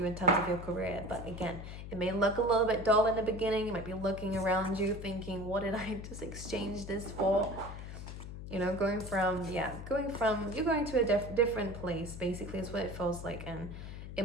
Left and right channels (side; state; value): left; noise; hum, 10 dB below the sound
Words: in terms of your career. But again, it may look a little bit dull in the beginning. You might be looking around you thinking, what did I just exchange this for? You know, you're going to a different place, basically, is what it feels like. And it